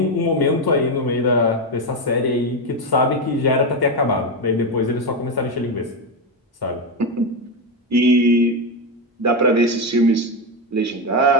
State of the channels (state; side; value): normal; both; correlation 0.10